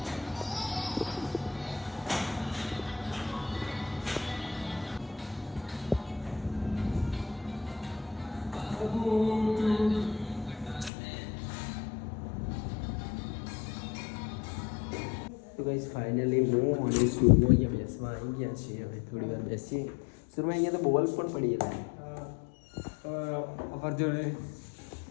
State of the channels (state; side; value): drops out; right; at 10.9 s